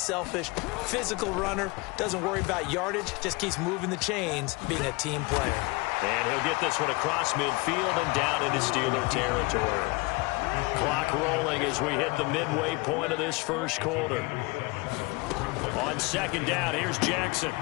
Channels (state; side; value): quieter; right; 25.0 dB